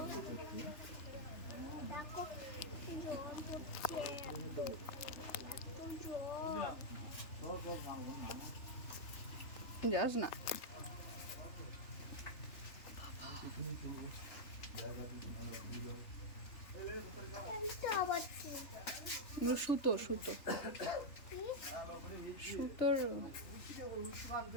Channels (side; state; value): right; late; 3.4 ms